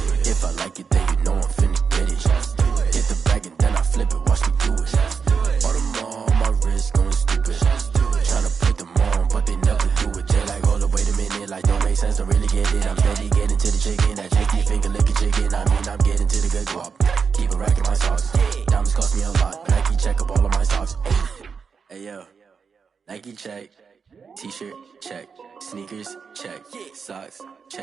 If I like it, then you know I'm finna get it. Hit the bag and then I flip it, watch me do it. All them on my wrist going stupid. Tryna put them on, but they never do it. They like, hold up, wait a minute, like don't make sense, don't really get it. I'm steady getting to the chicken, that tricky finger licking chicken. I mean, I'm getting to the good guap. Keep a rack in my socks. Diamonds cost me a lot. Nike check up all of my socks. Hey yo, Nike check. T-shirt check. Sneakers check. Socks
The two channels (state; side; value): quieter; left; 5.8 dB